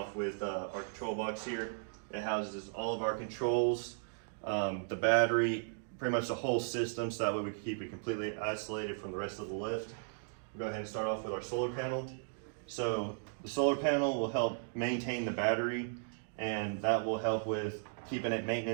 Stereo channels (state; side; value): silent; left; digital silence